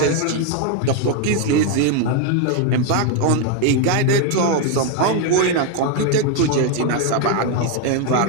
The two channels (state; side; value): different; both; correlation 0.01